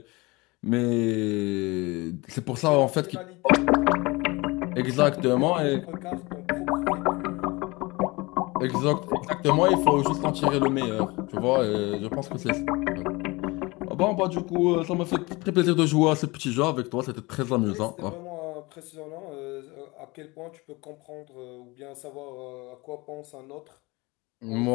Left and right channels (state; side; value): quieter; right; 23.8 dB